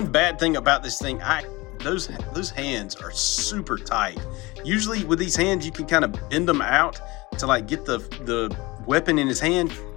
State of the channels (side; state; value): right; quieter; 22.4 dB